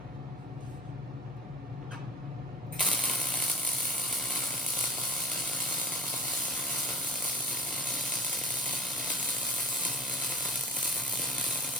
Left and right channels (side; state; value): both; normal; correlation 0.39